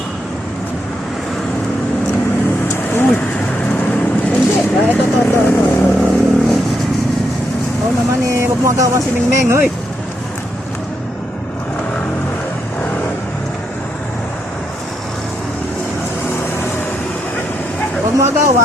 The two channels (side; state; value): both; normal; correlation 0.80